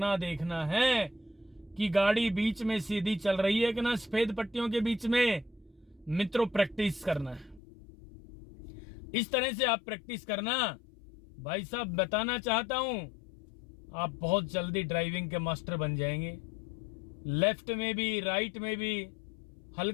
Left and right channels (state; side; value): drops out; right; at 7.6 s